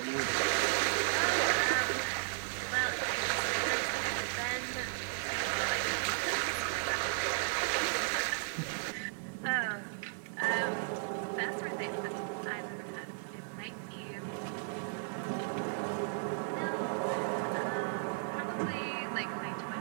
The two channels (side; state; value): left; silent; digital silence